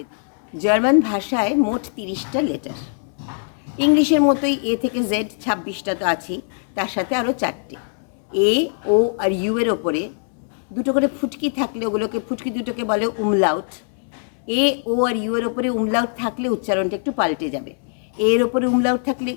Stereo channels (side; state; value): right; silent; digital silence